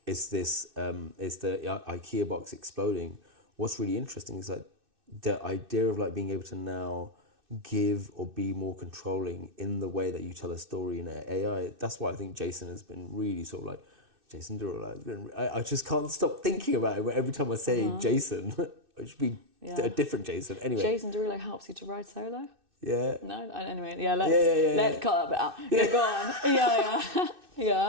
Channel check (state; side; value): late; left; 2.6 ms